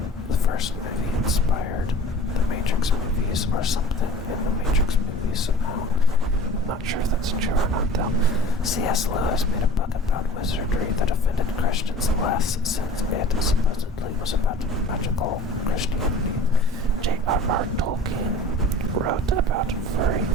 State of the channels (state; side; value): normal; both; correlation 0.45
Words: the first movie, inspired the Matrix movies, or something in the Matrix movies somehow. I'm not sure if that's true or not, though. C.S. Lewis made a book about wizardry that offended Christians less, since it supposedly was about magical Christianity. J.R.R. Tolkien wrote about